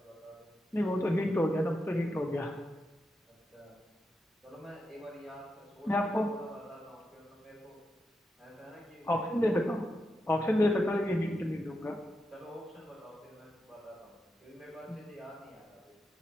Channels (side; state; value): both; normal; correlation 0.86